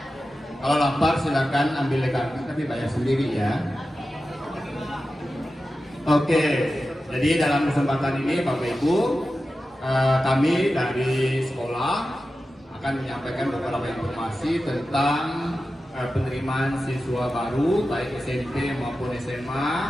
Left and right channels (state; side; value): normal; both; correlation 0.93